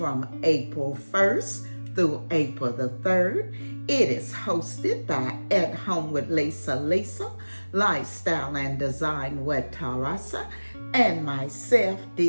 April 1st through April the 3rd. It is hosted by At Home with Lisa, Lifestyle and Design with Tarasa, and myself,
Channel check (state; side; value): inverted; both; correlation -1.00